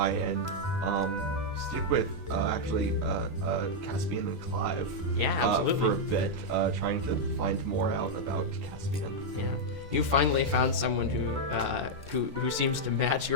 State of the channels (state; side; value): late; left; 2.1 ms